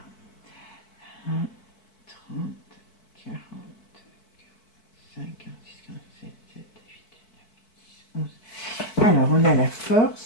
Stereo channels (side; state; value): right; late; 4.6 ms